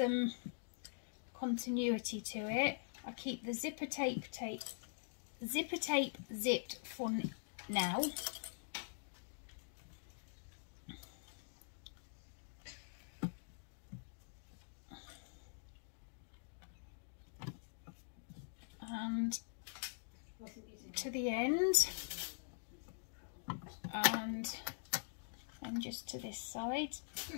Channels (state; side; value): silent; right; digital silence